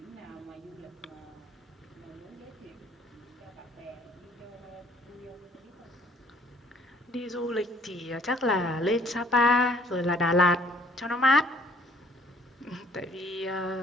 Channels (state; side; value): normal; both; correlation 0.58